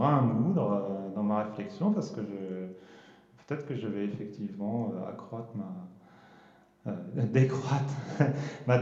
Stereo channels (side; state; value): both; identical; correlation 1.00